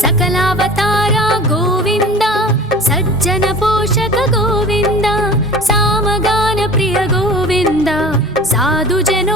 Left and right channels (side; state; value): both; normal; correlation 0.39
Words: సకలావతార గోవింద, సజ్జన పోషక గోవింద, సామగాన ప్రియ గోవింద, సాధు